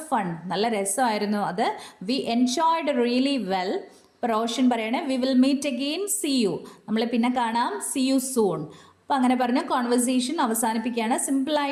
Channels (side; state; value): both; identical; correlation 1.00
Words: fun. നല്ല രസമായിരുന്നു അത്. We enjoyed really well. ഇപ്പോൾ റോഷൻ പറയാണ്, we will meet again, see you. നമ്മൾ പിന്നെ കാണാം, സി യു സൂൺ. അപ്പോൾ അങ്ങനെ പറഞ്ഞ് കോൺവെർസേഷൻ അവസാനിപ്പിക്കുകയാണ്.